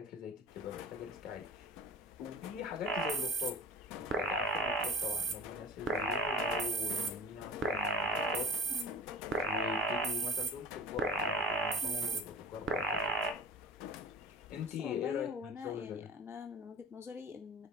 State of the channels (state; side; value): normal; both; correlation 0.35